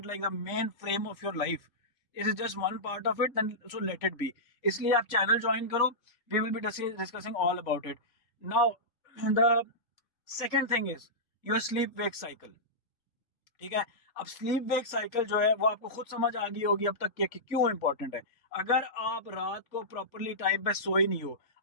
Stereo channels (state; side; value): late; right; 3.4 ms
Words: like the main frame of your life. It is just one part of it, then so let it be. इसलिए आप channel join करो, we will be discussing all about it. Now the second thing is your sleep wake cycle। ठीक है, अब sleep wake cycle जो है वो आपको खुद समझ आ गई होगी अब तक कि क्यों इंपॉर्टेंट है। अगर आप रात को प्रॉपरली टाइम पे सोए नहीं हो,